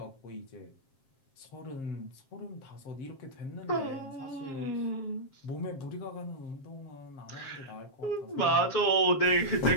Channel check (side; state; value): right; late; 7.5 ms